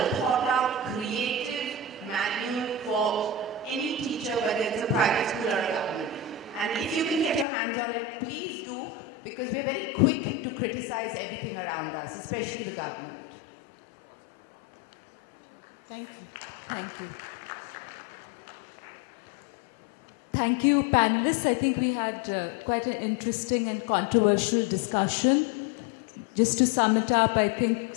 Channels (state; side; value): drops out; right; at 7.5 s